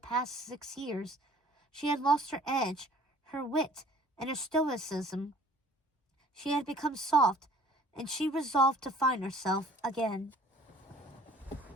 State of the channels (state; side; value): normal; both; correlation 0.53